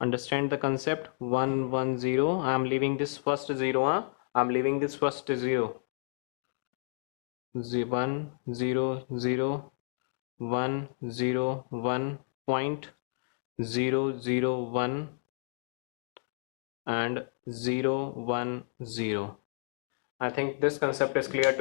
the concept. 1, 1, 0. I am leaving this first 0. I am leaving this first 0. 1, 0, 0, 1, 0, 1, point 0, 0, 1 and 0, 1, 0. I think this concept is clear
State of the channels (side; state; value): right; silent; digital silence